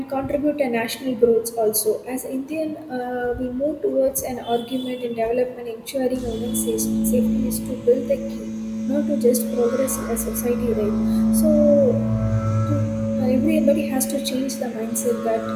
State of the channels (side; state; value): both; identical; correlation 1.00